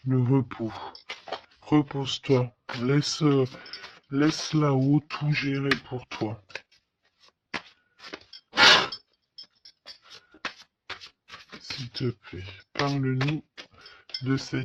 repos. Repose-toi. Laisse là-haut tout gérer pour toi. S'il te plaît, parle-nous de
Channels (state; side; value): identical; both; correlation 1.00